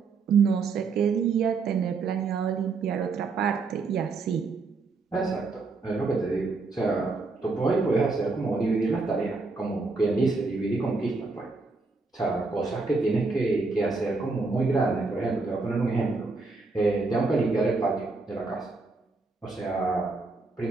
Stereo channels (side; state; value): left; quieter; 3.9 dB